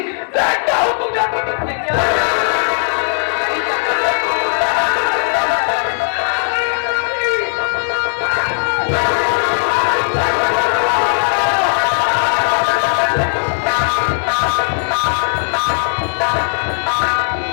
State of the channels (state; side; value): silent; right; digital silence